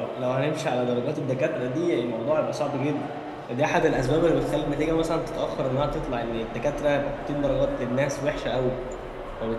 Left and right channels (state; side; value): identical; both; correlation 1.00